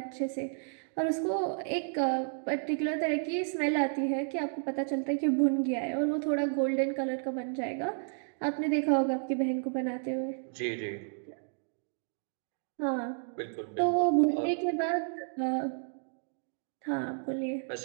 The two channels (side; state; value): left; silent; digital silence